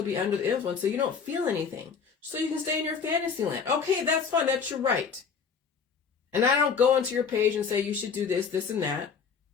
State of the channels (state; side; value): quieter; right; 6.0 dB